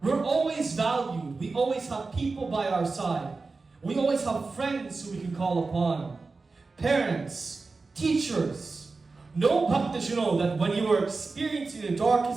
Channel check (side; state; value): left; quieter; 4.0 dB